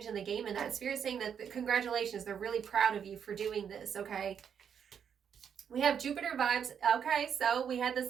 the game in that. Spirit saying that congratulations, they're really proud of you for doing this, okay? We have Jupiter vibes. Okay, so we had the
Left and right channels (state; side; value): quieter; left; 7.8 dB